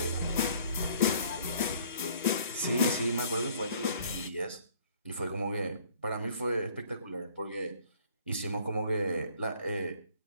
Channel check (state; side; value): inverted; both; correlation -0.57